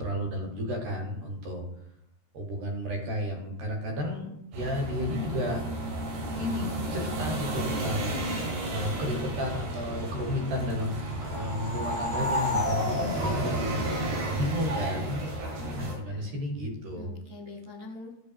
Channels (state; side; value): late; left; 13 ms